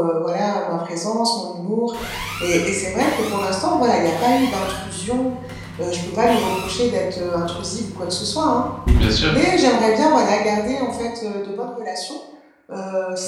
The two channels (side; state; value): both; identical; correlation 1.00